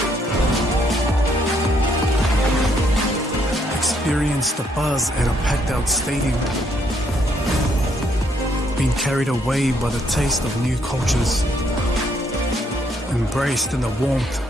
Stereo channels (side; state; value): both; normal; correlation 0.71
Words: Experienced the buzz at a packed out stadium? Been carried away by the taste of new cultures? Embraced in the warmth